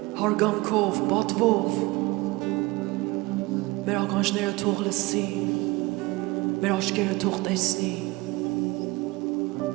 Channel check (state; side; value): quieter; left; 22.2 dB